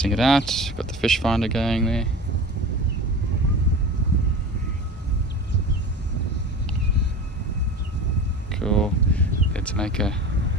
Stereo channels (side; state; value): both; normal; correlation 0.34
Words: it out. Got the fish finder going there. Cool. Let's